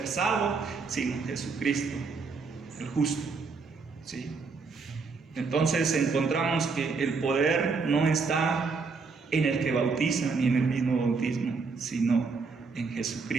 salvos, sino Jesucristo, el justo. ¿Sí? Entonces encontramos que el poder no está en el que bautiza ni en el mismo bautismo, sino en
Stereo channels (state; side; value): quieter; left; 4.6 dB